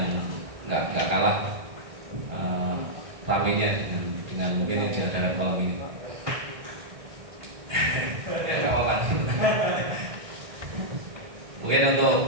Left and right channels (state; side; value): late; left; 1.6 ms